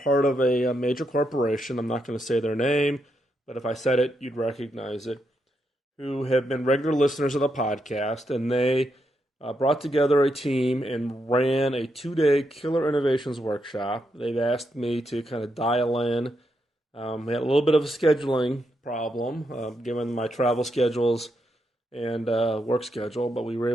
of a major corporation. I'm not going to say their name, but if I said it, you'd recognize it, who have been regular listeners of the podcast, and they brought together a team and ran a 2-day Killer Innovations workshop. They've asked me to kind of dial in. We had a little bit of a scheduling problem, given my travel schedules and work schedule, but we were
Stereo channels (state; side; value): normal; both; correlation 0.81